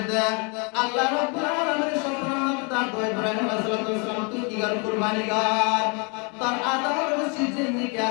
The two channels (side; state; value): right; quieter; 33.7 dB